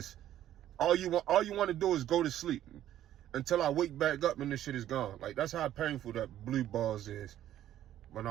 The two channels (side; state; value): left; quieter; 12.2 dB